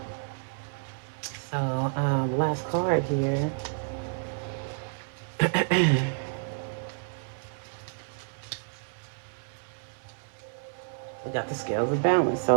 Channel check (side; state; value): left; silent; digital silence